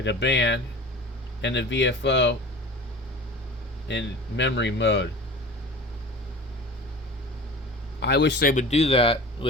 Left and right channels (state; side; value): normal; both; correlation 0.38